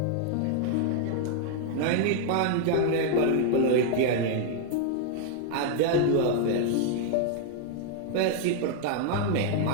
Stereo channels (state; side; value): different; both; correlation 0.00